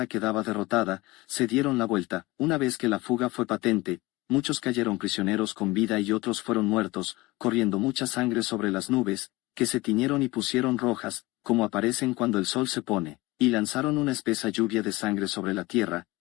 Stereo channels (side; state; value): right; quieter; 20.6 dB